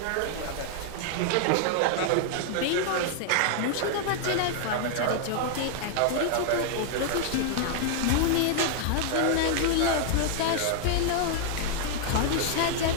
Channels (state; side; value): different; both; correlation 0.00